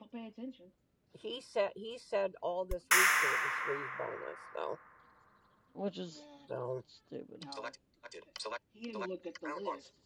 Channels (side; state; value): both; identical; correlation 1.00